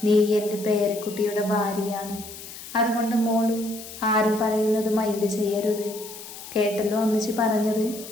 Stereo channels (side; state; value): left; noise; hiss, 13 dB below the sound